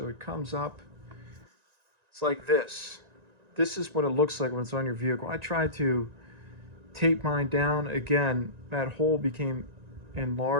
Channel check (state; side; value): late; left; 1.9 ms